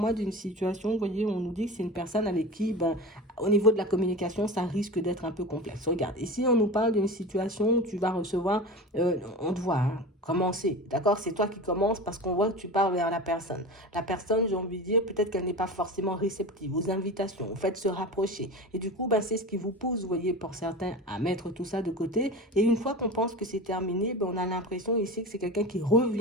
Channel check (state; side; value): normal; both; correlation 0.30